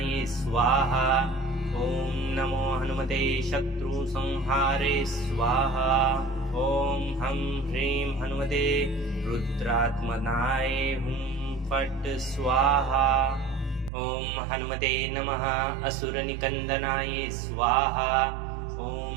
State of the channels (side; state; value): left; drops out; at 13.9 s